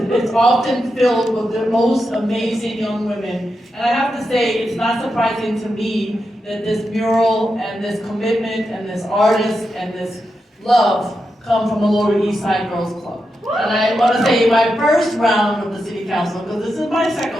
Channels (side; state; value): both; normal; correlation 0.87